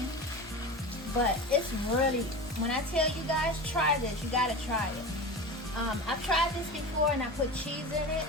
but it's really, when I tell you guys, try this, you got to try it. I've tried this before, and I put cheese in it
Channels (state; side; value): normal; both; correlation 0.29